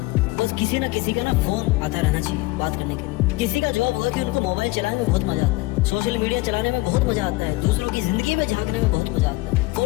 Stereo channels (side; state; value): right; quieter; 20.8 dB